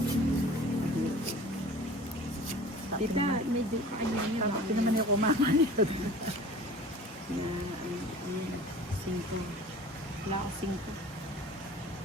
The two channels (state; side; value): normal; both; correlation 0.43